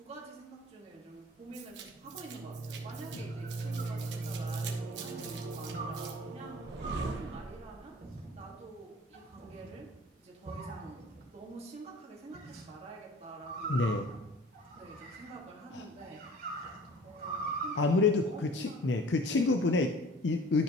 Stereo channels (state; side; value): normal; both; correlation 0.46